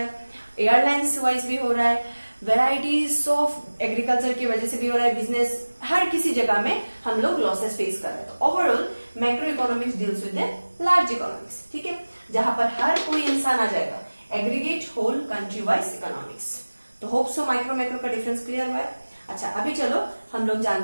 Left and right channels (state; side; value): inverted; both; correlation -1.00